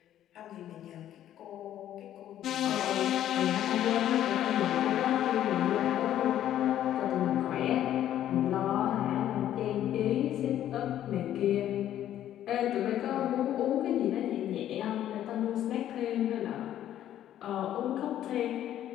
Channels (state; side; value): quieter; right; 11.7 dB